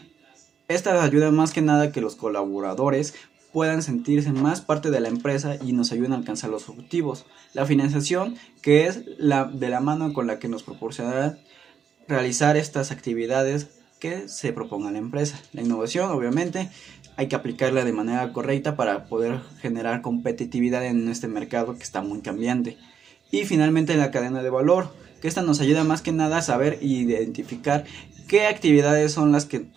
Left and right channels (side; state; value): left; quieter; 7.5 dB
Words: Esta ayuda más que nada a que los colaboradores puedan sentirse más parte de la empresa y nos ayudan a alcanzar los objetivos. La financiación, que es de la mano con la que nos proporcionará realizar estas actividades que se proponga la empresa. La innovación, obviamente, hay que aplicarla de manera correcta para poder generar competitividad en este mercado que está muy cambiante. Y finalmente la cadena de valor, que esta nos ayuda más que nada a saber e identificar qué actividades son las que